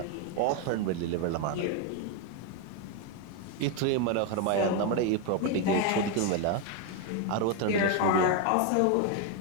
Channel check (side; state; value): both; different; correlation 0.01